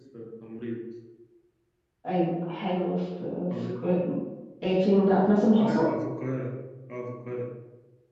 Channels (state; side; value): identical; both; correlation 1.00